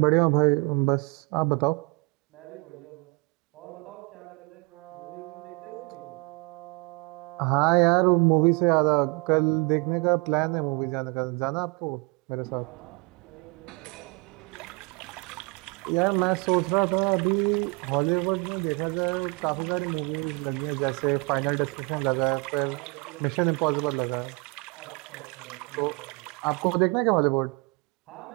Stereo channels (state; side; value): quieter; left; 29.5 dB